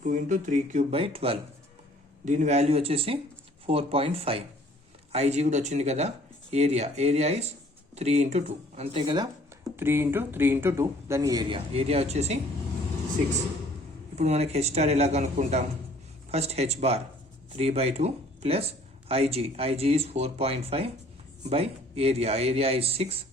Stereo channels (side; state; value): both; normal; correlation 0.56